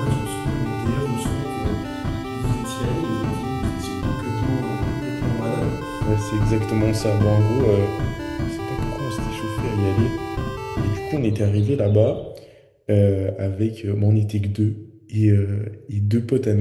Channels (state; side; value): identical; both; correlation 1.00